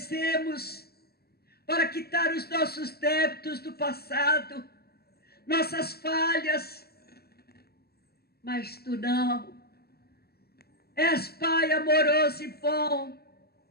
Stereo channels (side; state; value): right; late; 0.46 ms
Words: para quitar os nossos débitos do passado, nossas falhas. Mas tu não. És Pai amoroso e bom,